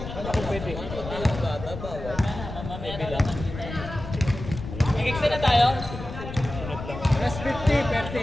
pwede. Nag-extend na tayo. Plus 50 per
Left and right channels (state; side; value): noise; left; rumble, 9 dB below the sound